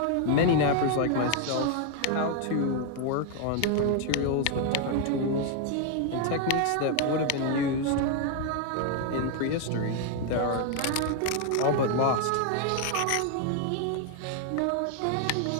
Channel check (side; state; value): both; different; correlation 0.01